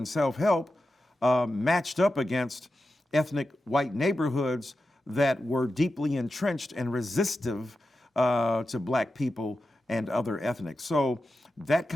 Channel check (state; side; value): normal; both; correlation 0.91